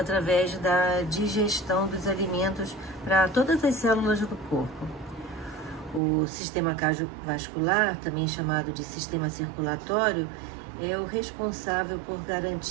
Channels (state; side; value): drops out; left; at 6.0 s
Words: da digestão dos alimentos para todas as células do corpo. O sistema cardiovascular, também chamado de sistema circulatório, é o responsável por